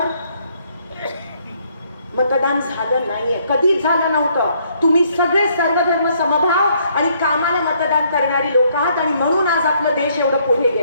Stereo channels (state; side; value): inverted; both; correlation -0.68